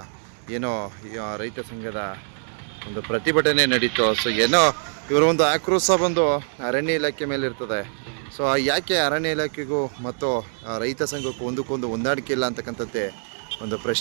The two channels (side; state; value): left; silent; digital silence